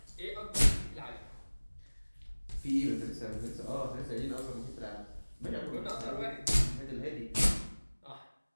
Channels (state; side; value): inverted; both; correlation -1.00